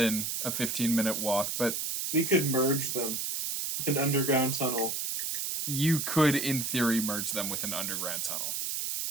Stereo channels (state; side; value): noise; right; hiss, 2 dB below the sound